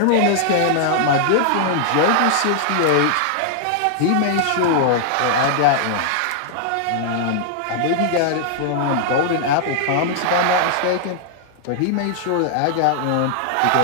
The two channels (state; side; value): different; both; correlation -0.01